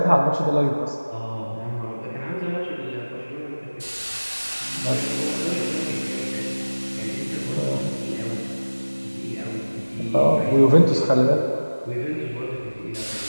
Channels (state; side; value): inverted; both; correlation -1.00